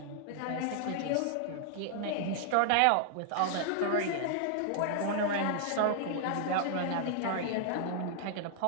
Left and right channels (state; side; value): different; both; correlation 0.00